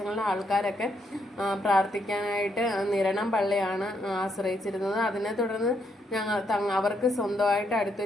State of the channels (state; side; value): normal; both; correlation 0.76